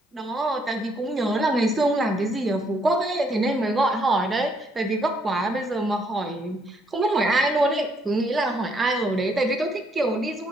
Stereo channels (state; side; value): normal; both; correlation 0.71